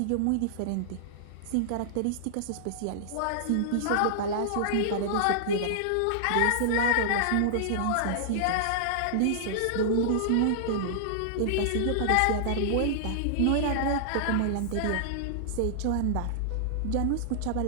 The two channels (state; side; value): different; both; correlation -0.01